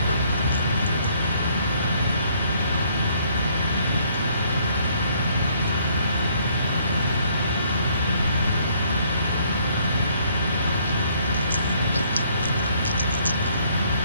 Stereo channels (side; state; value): both; inverted; correlation -0.65